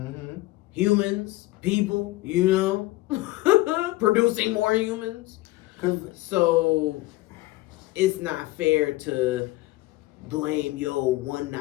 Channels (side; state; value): right; quieter; 19.1 dB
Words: Humans, people, producing more humans. So it's not fair to blame one